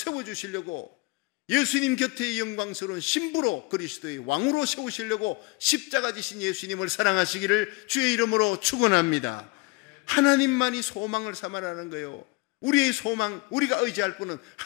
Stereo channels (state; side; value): quieter; right; 24.5 dB